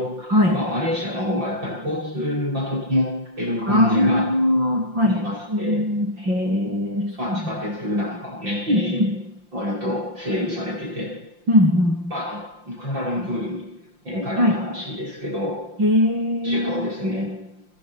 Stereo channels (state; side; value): late; left; 5.7 ms